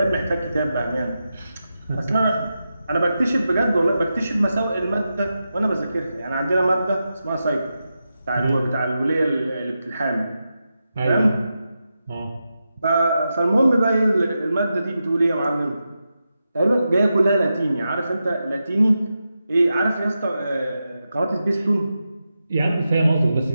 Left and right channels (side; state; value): both; inverted; correlation -0.89